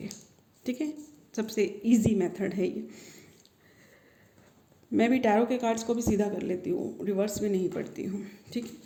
ठीक है, सबसे इजी मेथड है ये। मैं भी टैरो के कार्ड्स को भी सीधा कर लेती हूँ, रिवर्स में नहीं पढ़ती हूँ। ठीक है,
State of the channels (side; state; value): both; identical; correlation 1.00